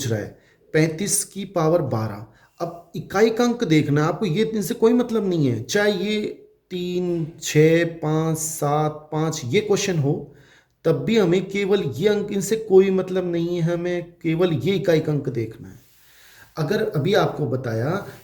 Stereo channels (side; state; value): both; identical; correlation 1.00